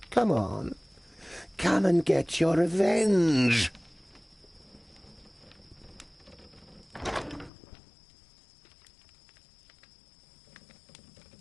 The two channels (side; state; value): right; drops out; at 7.5 s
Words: Come on. Come and get your revenge.